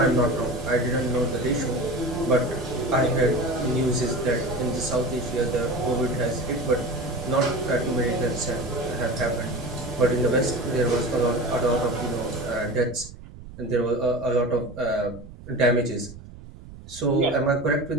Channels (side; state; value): right; noise; rumble, 16 dB below the sound